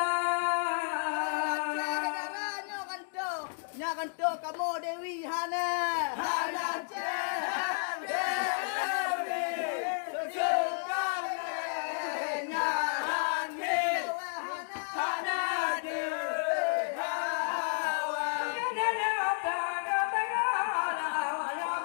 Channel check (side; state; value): right; silent; digital silence